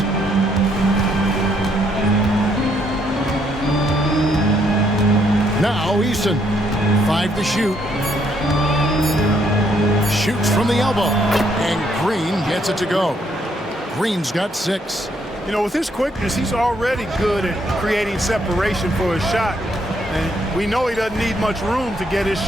Now Easton. 5 to shoot. Shoots from the elbow. And Green gets it to go. Green's got 6. You know, with his quickness, he's already good at creating separation for his shot. And we know he doesn't need much room to get his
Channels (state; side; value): normal; both; correlation 0.71